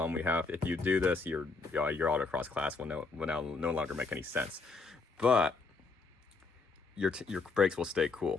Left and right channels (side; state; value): right; quieter; 4.0 dB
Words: we have, if you do this, your autocross class will no longer make any sense. But your brakes will stay